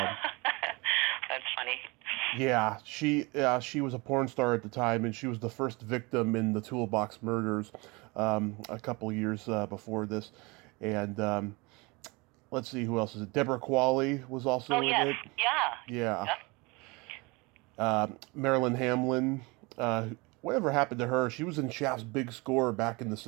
funny. Yeah, she was a porn star at the time, and she was the first victim in the Toolbox murders a couple years before this. And let's see, who else is it? Deborah Qualley was also in it. Yeah. Marilyn Hamlin. Whatever happened to her? She was in Shaft's Big Score back in the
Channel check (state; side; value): quieter; left; 26.2 dB